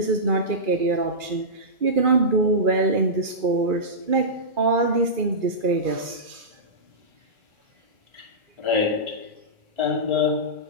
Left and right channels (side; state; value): left; late; 2.4 ms